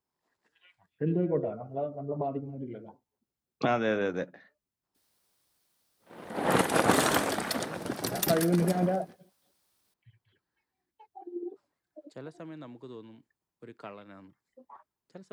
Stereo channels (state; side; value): identical; both; correlation 1.00